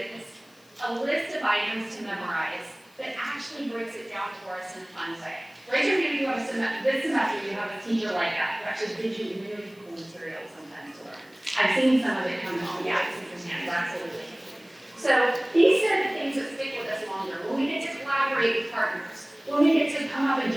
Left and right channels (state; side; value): noise; left; hiss, 29 dB below the sound